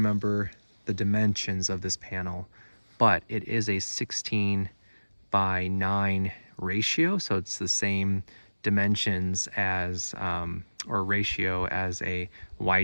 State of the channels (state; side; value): inverted; both; correlation -1.00